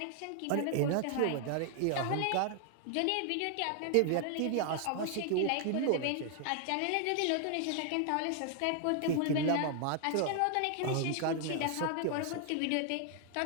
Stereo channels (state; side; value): different; both; correlation 0.00